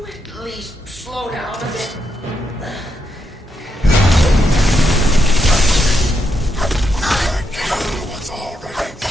at least slow down a bit? What's already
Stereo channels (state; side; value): normal; both; correlation 0.81